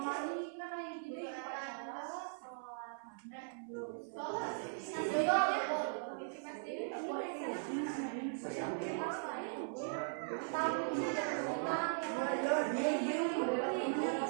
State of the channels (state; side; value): silent; left; 52 dB below the other